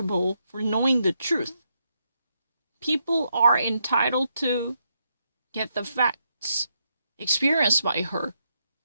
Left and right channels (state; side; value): inverted; both; correlation -0.80